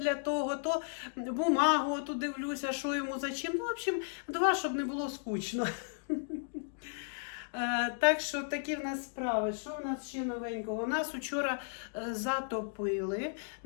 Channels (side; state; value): right; silent; digital silence